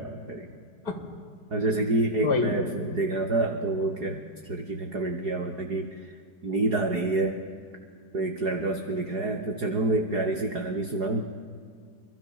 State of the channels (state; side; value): late; left; 4.8 ms